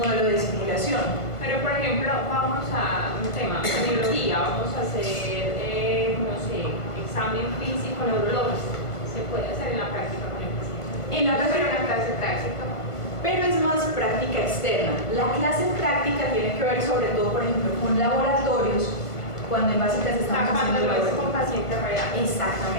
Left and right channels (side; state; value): right; late; 1.5 ms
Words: de simulación. Pero, por ejemplo, vamos a un tema, biología, vamos a hacer, no sé, examen físico neurológico. Se puede hacer en la práctica con el paciente. En la práctica, Pero en la clase práctica. pero es más práctica externa. La clase práctica tiene que ver sobre todo, por ejemplo, con laboratorios, cuando en básicas estamos Cuando haciendo lo ves laboratorios. con paciente real.